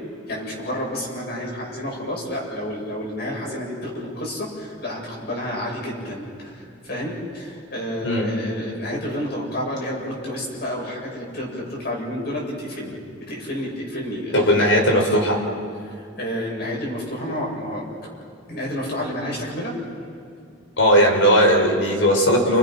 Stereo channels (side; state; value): both; normal; correlation 0.01